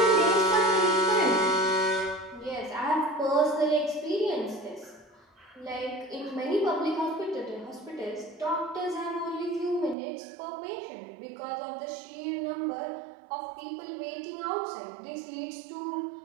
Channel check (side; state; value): left; drops out; at 10.0 s